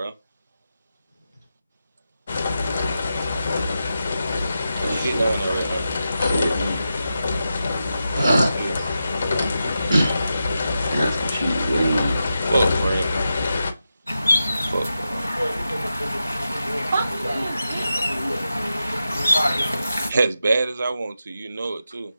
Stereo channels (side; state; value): both; inverted; correlation -0.89